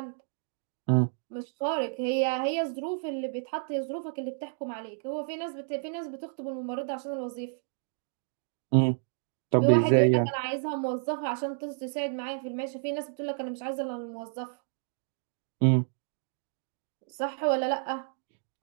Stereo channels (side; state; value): left; silent; digital silence